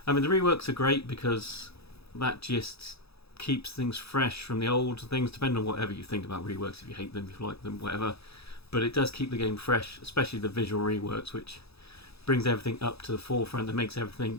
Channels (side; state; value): right; late; 0.78 ms